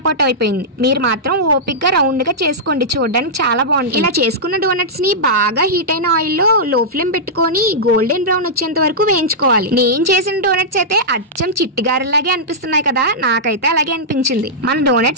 అవుట్ అయిపోయింది. మీరు మాత్రం ఓపిక్ గా రౌండ్ గా చేసుకోండి, చూడడానికి చాలా బాగుంటుంది. ఇలా చేసుకున్న డోనట్స్ ని బాగా హీట్ అయిన ఆయిల్ లో లో ఫ్లేమ్ పెట్టుకొని గోల్డెన్ బ్రౌన్ వచ్చేంత వరకు వేయించుకోవాలి. నేను చేసిన డోనట్స్ అయితే అచ్చం చిట్టిగారెలాగే అనిపిస్తున్నాయి కదా, నాకైతే అలాగే అనిపించింది. మన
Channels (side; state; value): both; normal; correlation -0.11